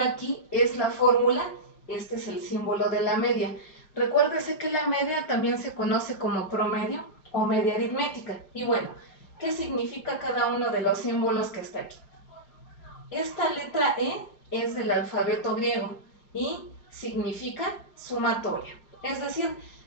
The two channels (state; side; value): late; right; 5.1 ms